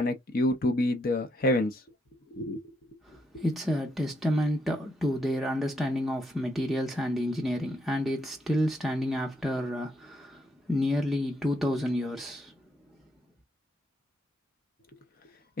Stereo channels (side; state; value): both; normal; correlation 0.76